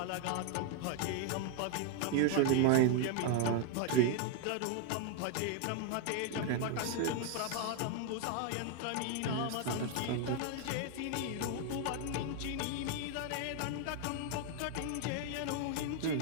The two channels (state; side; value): different; both; correlation 0.00